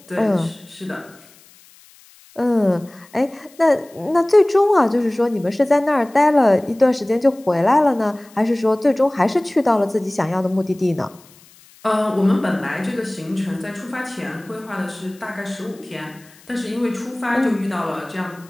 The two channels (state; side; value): noise; left; hiss, 26 dB below the sound